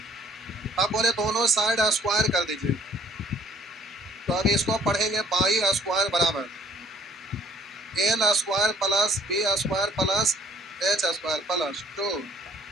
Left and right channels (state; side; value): normal; both; correlation 0.57